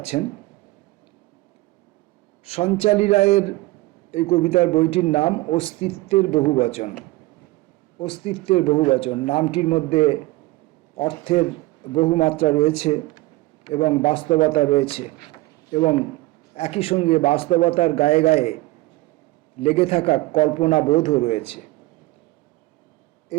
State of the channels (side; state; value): left; quieter; 20.0 dB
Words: সঞ্চালী রায়ের এই কবিতার বইটির নাম অস্তিত্বের বহুবচন। অস্তিত্বের বহুবচন নামটির মধ্যে অর্থের বহুমাত্রা রয়েছে এবং বাস্তবতা রয়েছে, এবং একই সঙ্গে বাস্তবতার গায়ে গায়ে লেগে থাকা কল্পনা বোধও রয়েছে।